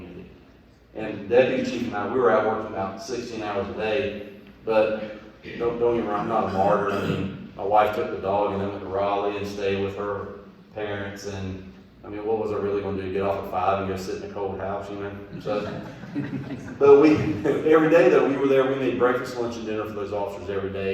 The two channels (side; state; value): both; identical; correlation 1.00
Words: And Deputy Chief and I, we were out working about 16 hours a day, but don't get me wrong, I'm not a martyr. I mean, my wife took the dog and then went to Raleigh and stayed with her parents, and I mean, what was I really going to do? Get off at 5 and go sit in a cold house, you know? So, but every day though, we were there. We made breakfast, lunch, and dinner for those officers every